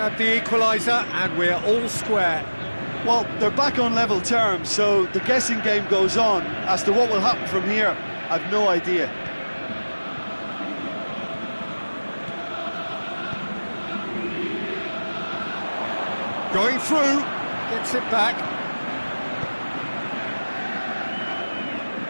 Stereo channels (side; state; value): both; inverted; correlation -1.00